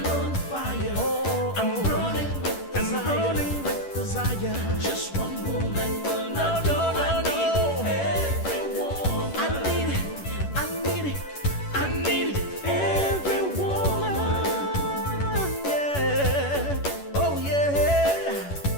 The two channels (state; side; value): late; right; 11 ms